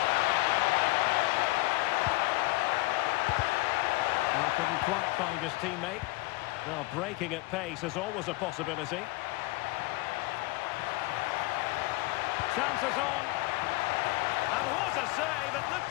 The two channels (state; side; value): quieter; right; 21.2 dB